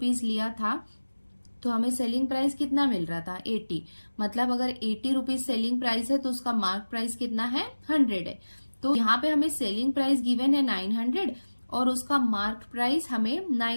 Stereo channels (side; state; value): both; inverted; correlation -1.00